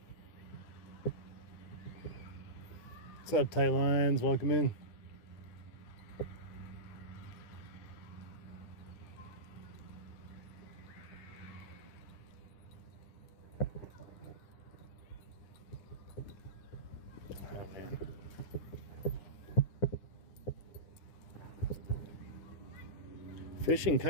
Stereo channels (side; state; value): right; late; 9.9 ms